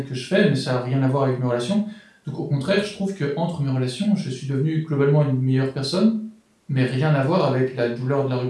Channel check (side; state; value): both; identical; correlation 1.00